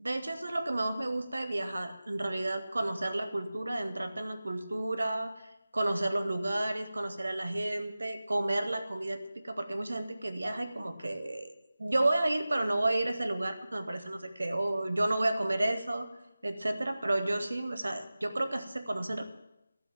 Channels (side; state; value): both; inverted; correlation -0.96